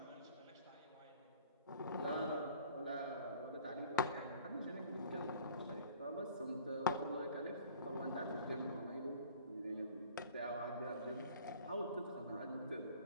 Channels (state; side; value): inverted; both; correlation -0.50